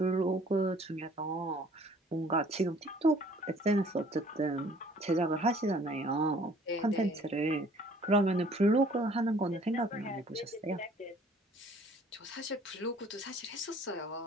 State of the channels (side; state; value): both; normal; correlation 0.55